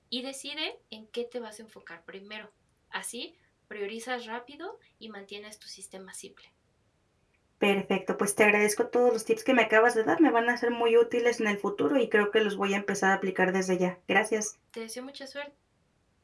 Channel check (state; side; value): identical; both; correlation 1.00